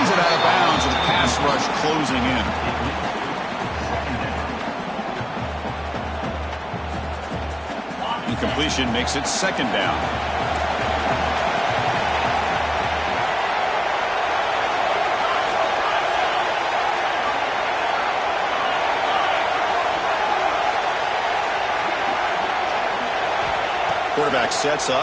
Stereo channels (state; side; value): identical; both; correlation 1.00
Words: it out of bounds with the pass rush closing in. Incompletion makes it 2nd down. Quarterback sets